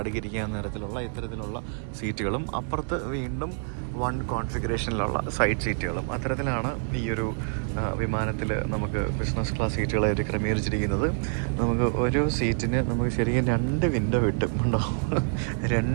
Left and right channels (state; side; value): silent; left; 57 dB below the other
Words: തരത്തിലുള്ള ഇത്തരത്തിലുള്ള സീറ്റുകളും, അപ്പുറത്ത് വീണ്ടും 1 കോൺഫിഗറേഷനിലുള്ള സൈഡ് സീറ്റുകളും, അത്തരത്തിലാണ് ഈ ഒരു വിമാനത്തിൽ നമുക്ക് ബിസിനസ് ക്ലാസ് സീറ്റുകളായിട്ട് ക്രമീകരിച്ചിരിക്കുന്നത്. നമുക്ക് ഒരു സീറ്റിന് നമുക്ക് ശരിക്കും 2 വിൻഡോ കിട്ടും, ഉണ്ടോ?